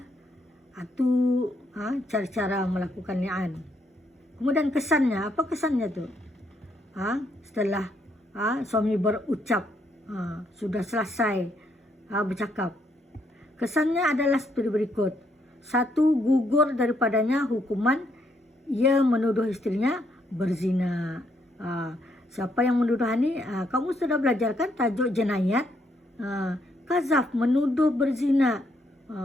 cara-cara melakukan li'an. Kemudian kesannya, apa kesannya tu? Setelah suami berucap, sudah selesai bercakap, kesannya adalah seperti berikut. 1, gugur daripadanya hukuman ia menuduh istrinya berzina. Siapa yang menuduh ini? Kamu sudah belajar kan tajuk jenayat? Kazaf, menuduh berzina.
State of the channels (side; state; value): both; normal; correlation 0.74